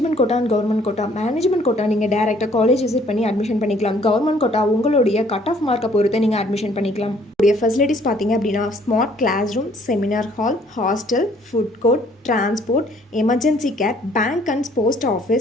quota and government quota. Management quota நீங்கள் டேரெக்டாக காலேஜ் விசிட் பண்ணி அட்மிஷன் பண்ணிக்கலாம். கவர்மெண்ட் கோட்டா உங்களுடைய கட் ஆஃப் மார்க்கை பொறுத்து நீங்கள் அட்மிஷன் பண்ணிக்கலாம். உடைய ஃபெசிலிட்டிஸ் பார்த்தீங்க அப்படின்னா, smart class room, seminar hall, hostel, food court, transport, emergency care, bank and post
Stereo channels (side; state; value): both; normal; correlation 0.61